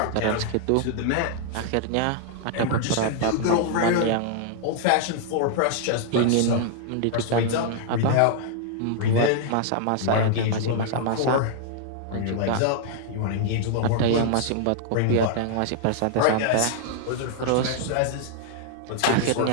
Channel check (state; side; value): different; both; correlation -0.01